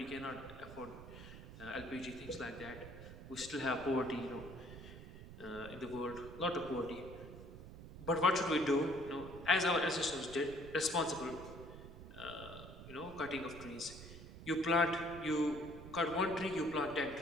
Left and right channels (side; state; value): right; noise; rumble, 13 dB below the sound